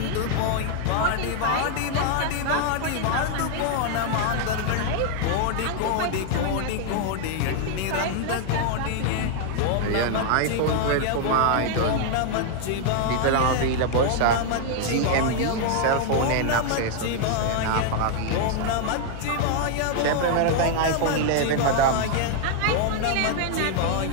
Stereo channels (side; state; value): both; different; correlation 0.00